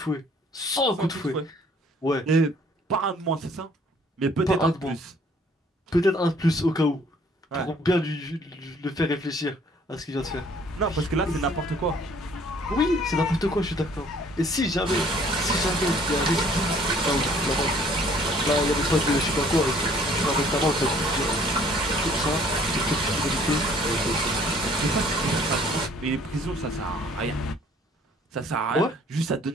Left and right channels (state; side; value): normal; both; correlation 0.58